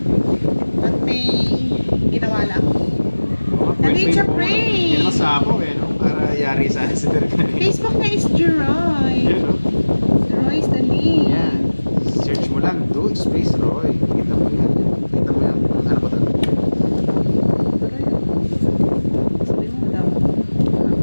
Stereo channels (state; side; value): inverted; both; correlation -1.00